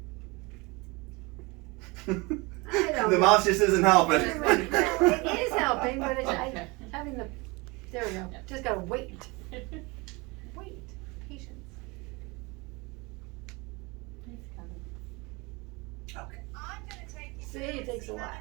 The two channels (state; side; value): quieter; left; 26.1 dB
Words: I don't The know. mouse just isn't helping. It is helping, but it's Okay. having the. There we go. Yeah. Just gotta wait. Wait. Patience. It's coming. Okay. I'm gonna take you See, through it and takes see a how